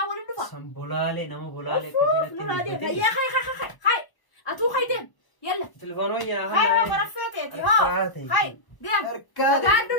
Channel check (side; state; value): right; late; 1.0 ms